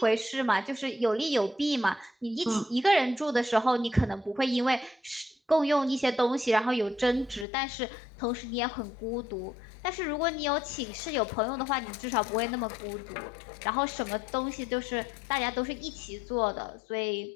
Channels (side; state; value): right; drops out; at 7.5 s